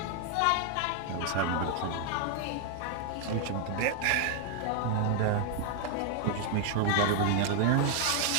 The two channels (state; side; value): different; both; correlation 0.00